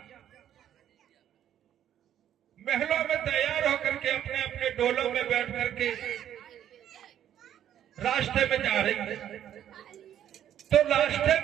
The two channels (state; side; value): quieter; left; 10.6 dB